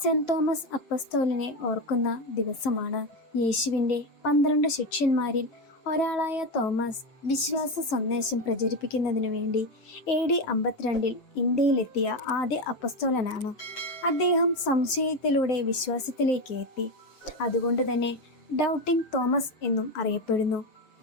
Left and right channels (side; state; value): right; late; 7.4 ms